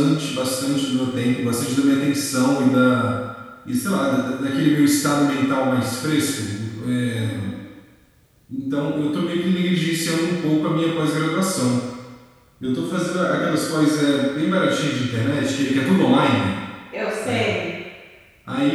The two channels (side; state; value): both; identical; correlation 1.00